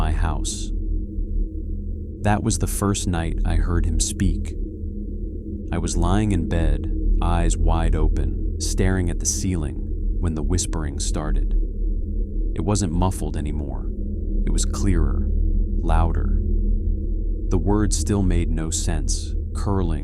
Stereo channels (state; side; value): identical; both; correlation 1.00